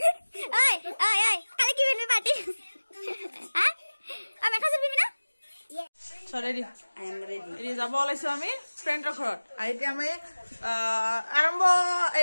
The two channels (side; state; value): both; inverted; correlation -1.00